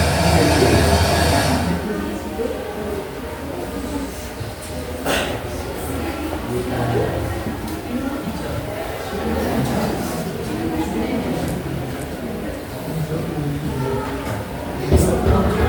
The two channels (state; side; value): identical; both; correlation 1.00